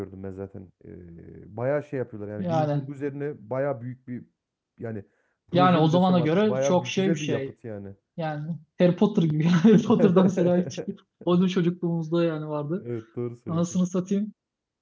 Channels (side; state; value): both; identical; correlation 1.00